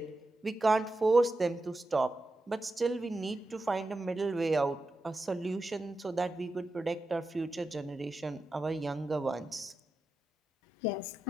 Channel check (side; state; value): both; normal; correlation 0.91